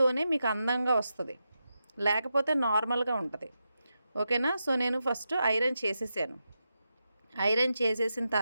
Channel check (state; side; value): inverted; both; correlation -0.88